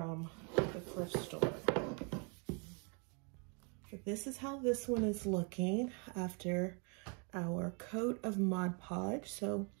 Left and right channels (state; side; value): quieter; left; 36.1 dB